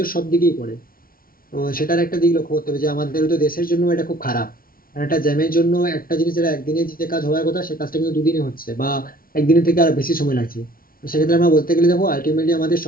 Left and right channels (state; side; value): late; right; 0.42 ms